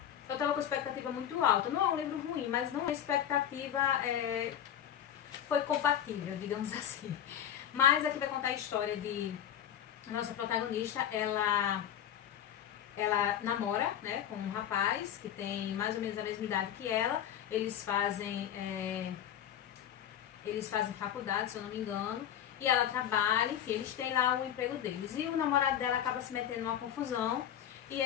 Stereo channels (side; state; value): right; quieter; 10.1 dB